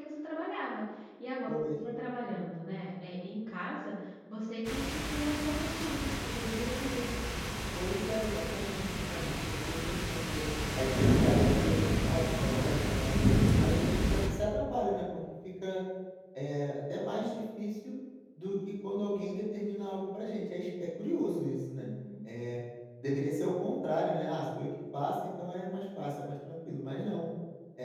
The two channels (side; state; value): both; identical; correlation 1.00